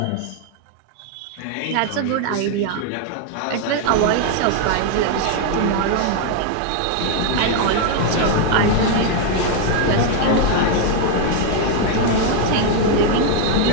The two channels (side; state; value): both; different; correlation 0.00